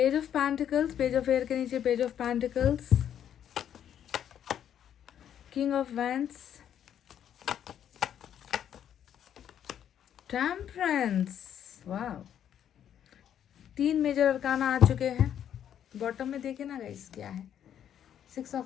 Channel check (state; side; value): quieter; right; 9.7 dB